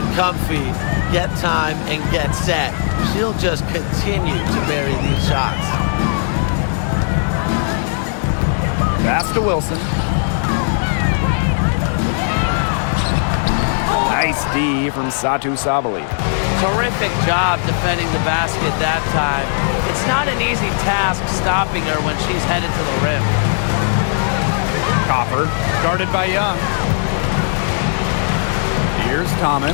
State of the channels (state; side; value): silent; right; digital silence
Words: comfy, get time, and get set, she'll just continue to bury these shots. Pass to Wilson. Nice D from Satu Sabali. Terrific job defending the basket that time. It's not an easy task stopping her when she's headed to the rim. Copper, guarded by Young. Here's